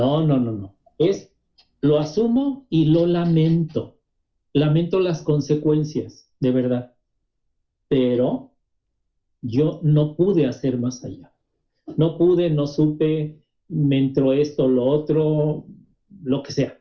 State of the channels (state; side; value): identical; both; correlation 1.00